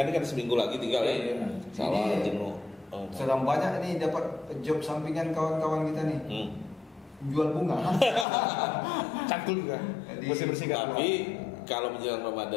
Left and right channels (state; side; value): drops out; right; at 8.2 s